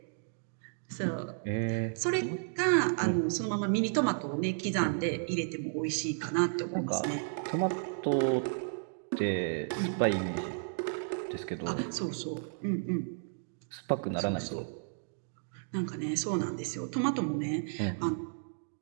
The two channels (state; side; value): silent; left; digital silence